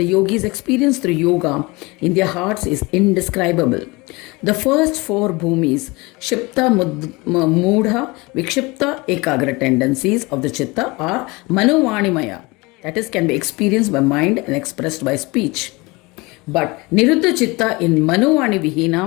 yogis experience through yoga in their hearts is indescribable. The first four bhumis, Shipta, Mudha, Vikshipta, Ekagra tendencies of the Chitta are Manovanimaya, that is, can be experienced by mind and expressed by speech. But Niruddha Chitta in Manovani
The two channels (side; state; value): right; quieter; 24.4 dB